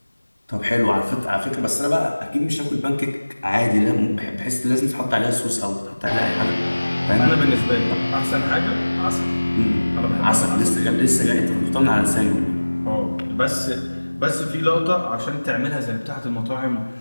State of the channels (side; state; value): both; inverted; correlation -1.00